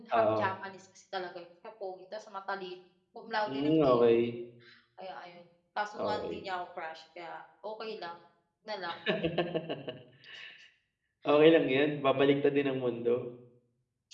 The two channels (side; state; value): both; identical; correlation 1.00